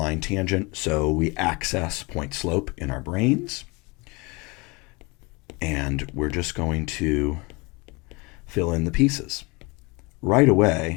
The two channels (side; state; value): right; quieter; 26.7 dB